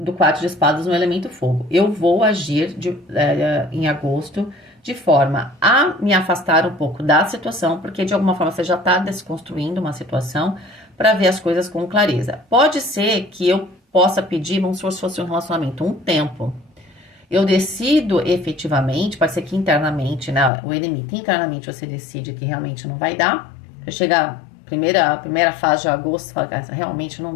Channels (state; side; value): drops out; right; at 20.5 s